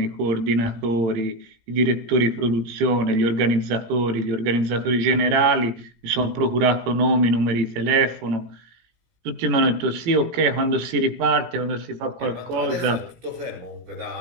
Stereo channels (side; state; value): left; late; 18 ms